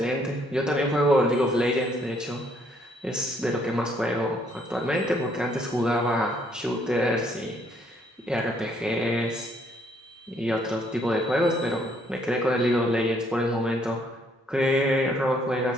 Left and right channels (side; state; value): both; normal; correlation 0.67